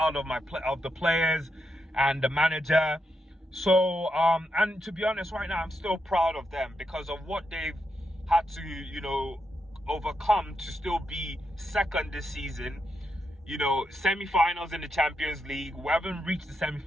of the players and the manager. So, and to be honest, right now, I'm still proud of them because of what they've had to, you know, overcome to still be second this season. You know, semi-finals in the Champions League. We haven't reached the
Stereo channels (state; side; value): normal; both; correlation 0.84